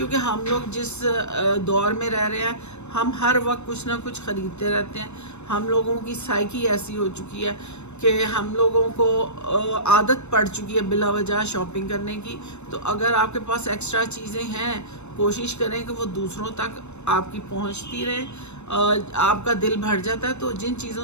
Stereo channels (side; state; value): right; late; 0.82 ms